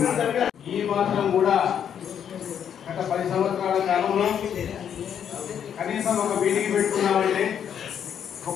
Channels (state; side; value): quieter; right; 8.6 dB